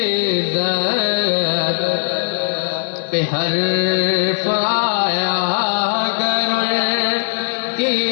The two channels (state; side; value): silent; right; 67 dB below the other